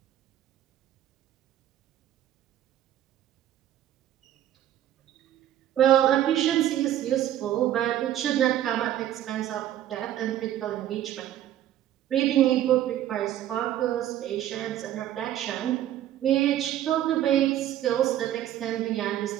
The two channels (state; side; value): quieter; left; 12.2 dB